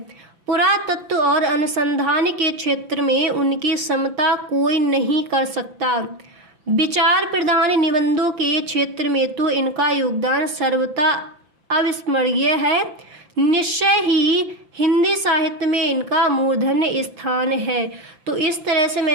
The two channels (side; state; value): left; late; 5.9 ms